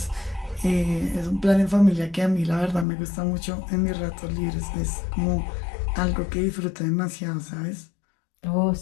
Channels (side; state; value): right; drops out; at 2.9 s